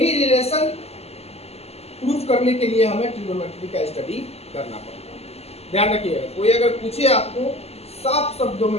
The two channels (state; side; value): late; right; 0.30 ms